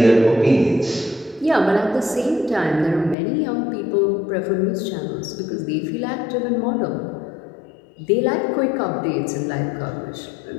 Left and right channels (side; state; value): right; drops out; at 3.2 s